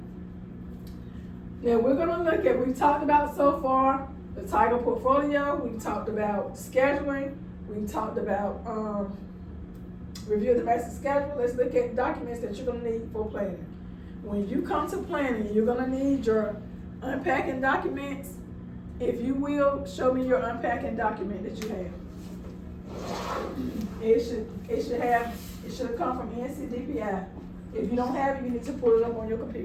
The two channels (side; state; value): both; identical; correlation 1.00